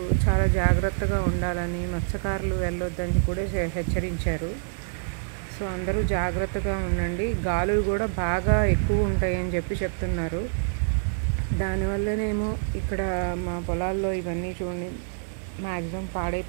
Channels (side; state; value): left; silent; digital silence